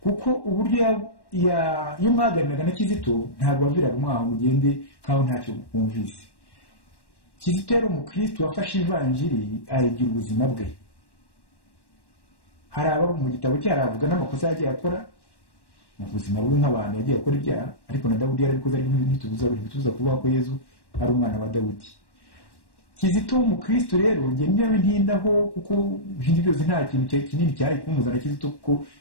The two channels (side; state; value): right; late; 1.1 ms